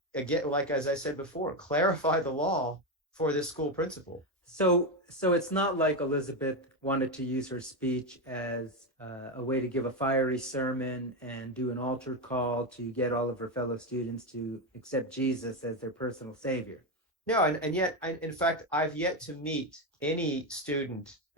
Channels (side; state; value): both; normal; correlation 0.11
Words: again, like as I said before, clarify the law for this school principal. So it's not like Elizabeth wanted to use her speech as a way to give a fiery sermon and do an altar call to get all of her fellow students to accept Jesus as their personal savior. No, and yet, in fact, I've yet to meet any student